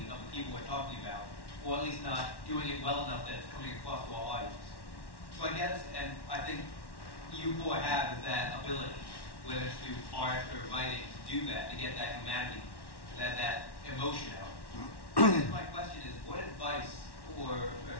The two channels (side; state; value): right; late; 1.1 ms